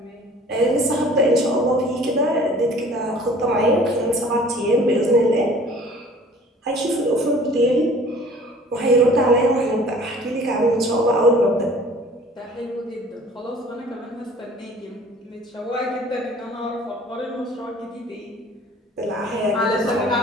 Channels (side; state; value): both; normal; correlation 0.50